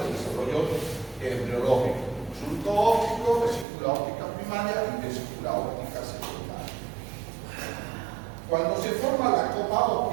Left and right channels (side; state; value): left; drops out; at 3.7 s